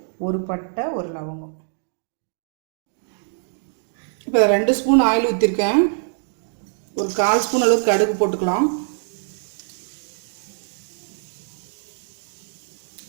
ஒரு பட்டை, ஒரு லவங்கம். இப்போ 2 ஸ்பூன் ஆயில் ஊற்றிருக்கேன். ஒரு 1/4 ஸ்பூன் அளவுக்கு கடுகு போட்டுக்கலாம்.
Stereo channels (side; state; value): left; silent; digital silence